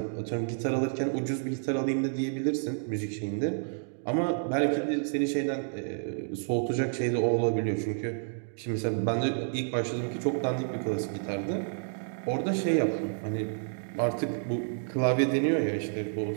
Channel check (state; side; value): silent; left; digital silence